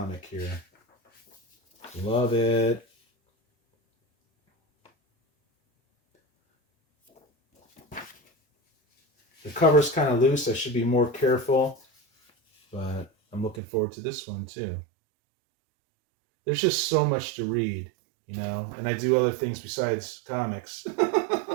here. Love it. The cover's kind of loose. I should be more careful. But I'm looking forward to this one too. There's just so much to read, you know, and I do other things besides comics,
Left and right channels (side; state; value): left; drops out; at 13.6 s